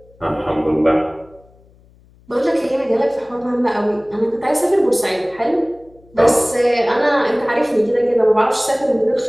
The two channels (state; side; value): noise; left; hum, 29 dB below the sound